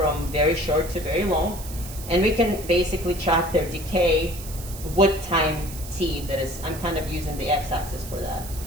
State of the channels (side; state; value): right; noise; hiss, 13 dB below the sound